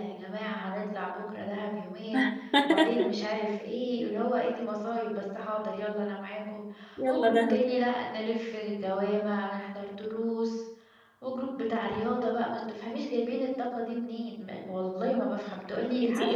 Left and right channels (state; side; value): identical; both; correlation 1.00